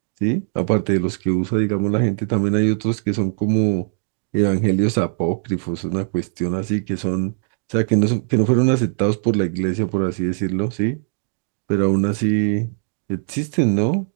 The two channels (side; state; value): left; silent; digital silence